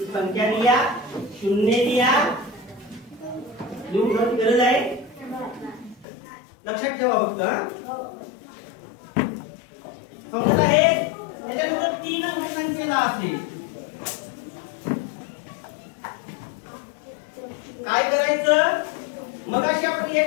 संख्या लिहा, शून्य लिहा, लिहून ठेवण्याची गरज आहे. लक्षात ठेवा फक्त. समजत आहे? त्याच्यानंतर 3 अंकी संख्येला असेल काय करायचं? मगाशी आपण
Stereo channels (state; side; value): drops out; right; at 6.1 s